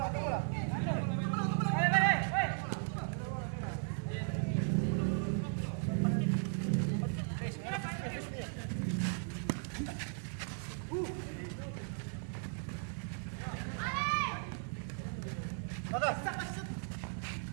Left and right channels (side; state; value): left; silent; 53 dB below the other